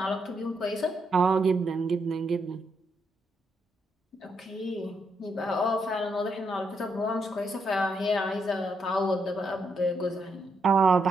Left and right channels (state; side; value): normal; both; correlation 0.79